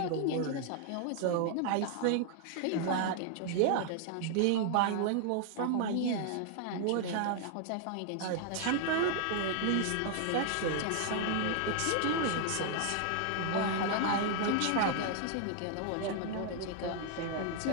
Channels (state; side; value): different; both; correlation 0.00